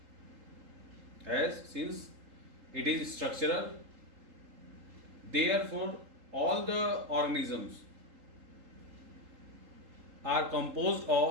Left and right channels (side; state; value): left; late; 3.8 ms